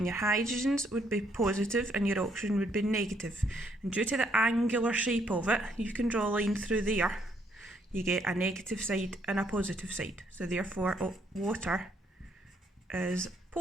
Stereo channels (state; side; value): normal; both; correlation 0.71